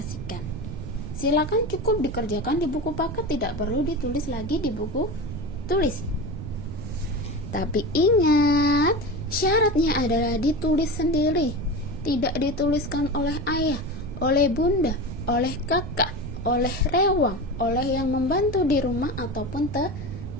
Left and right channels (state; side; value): noise; right; rumble, 8 dB below the sound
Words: Silakan cukup dikerjakan di buku paket, tidak perlu ditulis lagi di buku tulis. Tapi ingat, syaratnya adalah ditulis sendiri. Tidak dituliskan oleh ayah, oleh bunda, oleh kakak, oleh rewang, oleh yang membantu di rumah ataupun